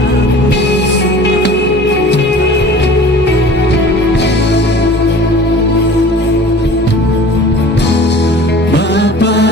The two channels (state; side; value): normal; both; correlation 0.43